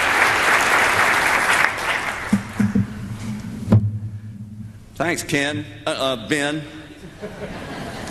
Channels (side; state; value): both; identical; correlation 1.00